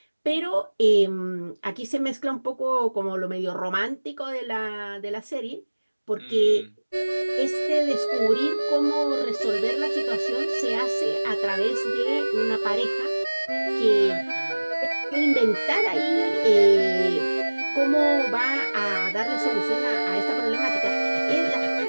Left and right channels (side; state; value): both; inverted; correlation -1.00